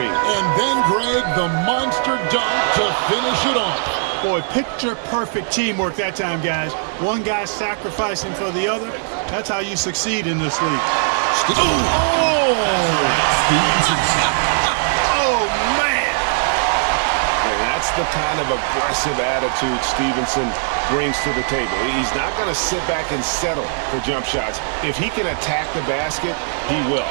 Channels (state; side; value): silent; left; digital silence